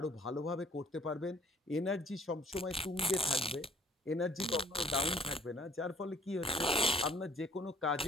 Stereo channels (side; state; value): both; normal; correlation 0.57